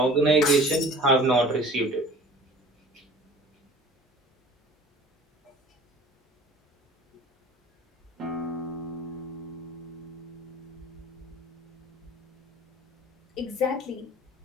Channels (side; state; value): both; normal; correlation 0.46